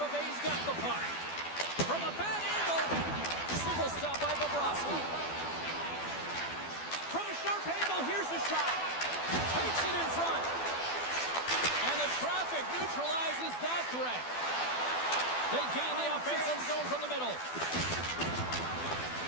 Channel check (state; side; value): late; right; 12 ms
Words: Bay's got the puck. From a bad angle. Single stop by Bobrovsky. From a sharp angle, here's a shot. Takes it in front. And the traffic neutralizes that threat. They gain the offensive zone from the middle.